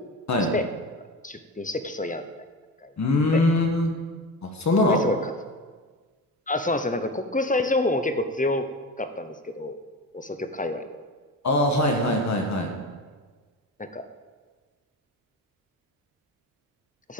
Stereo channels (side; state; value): both; normal; correlation 0.27